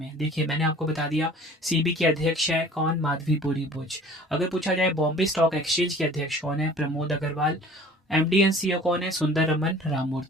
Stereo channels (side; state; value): both; normal; correlation 0.47